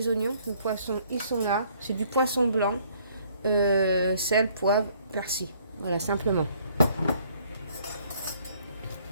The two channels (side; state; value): both; inverted; correlation -0.62